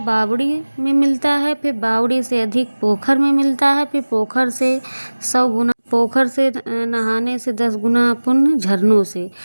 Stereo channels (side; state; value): both; inverted; correlation -1.00